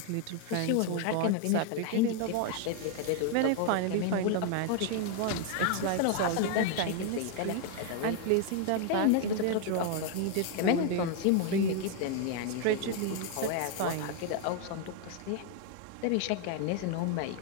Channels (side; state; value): both; different; correlation 0.00